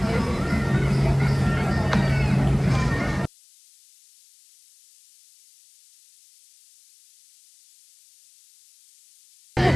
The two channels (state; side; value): noise; left; hiss, 29 dB below the sound